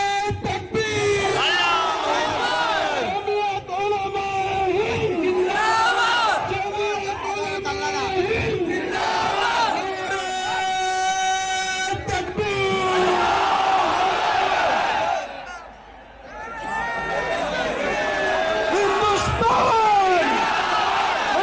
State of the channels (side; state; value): both; identical; correlation 1.00